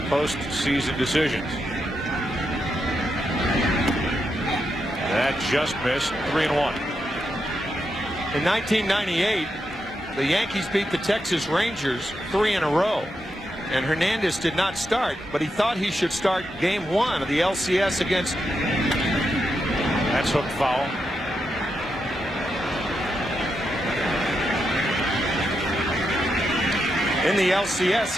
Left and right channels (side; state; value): both; normal; correlation 0.84